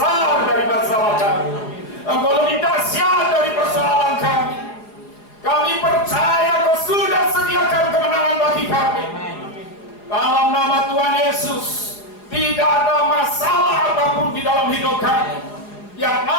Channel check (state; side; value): late; right; 4.8 ms